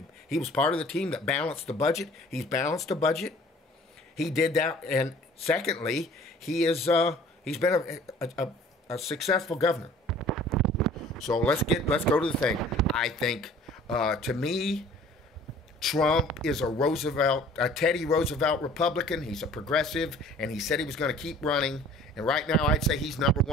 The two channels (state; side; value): normal; both; correlation 0.50